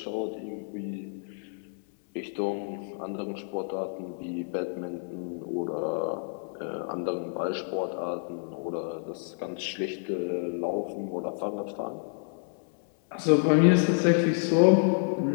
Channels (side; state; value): right; silent; 59 dB below the other